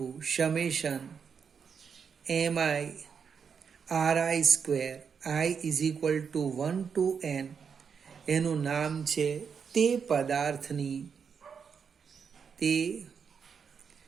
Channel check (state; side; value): quieter; left; 6.5 dB